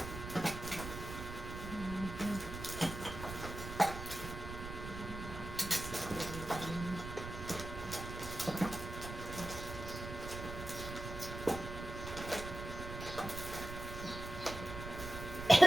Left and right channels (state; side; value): noise; right; rumble, 8 dB below the sound